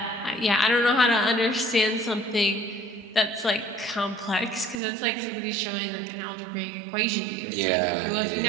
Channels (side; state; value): left; drops out; at 4.8 s